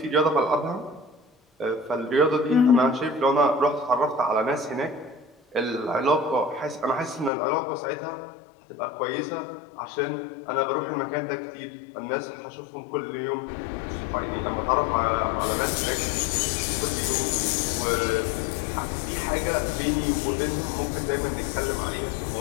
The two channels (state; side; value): drops out; right; at 7.3 s